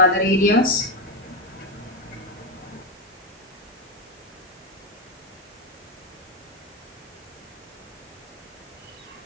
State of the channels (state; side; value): normal; both; correlation 0.10